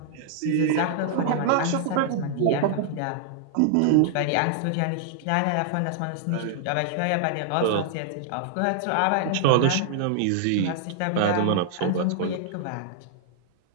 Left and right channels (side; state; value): both; different; correlation -0.01